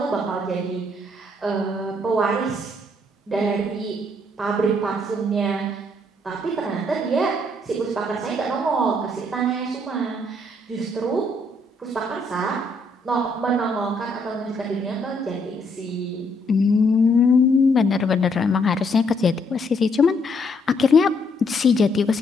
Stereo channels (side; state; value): both; normal; correlation 0.70